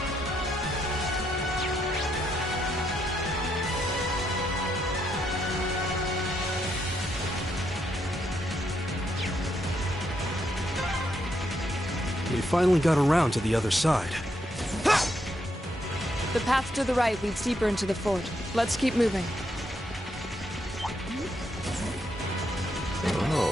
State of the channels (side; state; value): both; normal; correlation 0.78